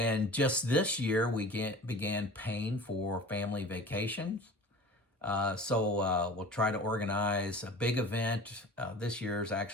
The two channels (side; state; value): both; normal; correlation 0.39